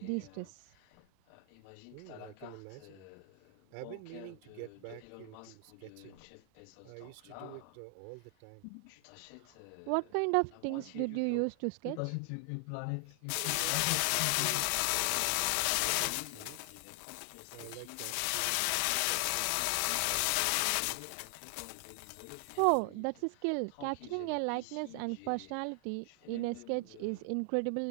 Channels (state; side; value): different; both; correlation 0.00